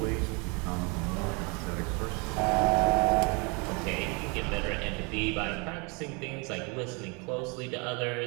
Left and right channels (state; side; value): quieter; left; 31.2 dB